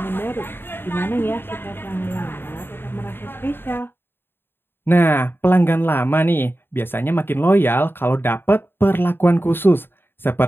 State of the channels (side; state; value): right; late; 0.10 ms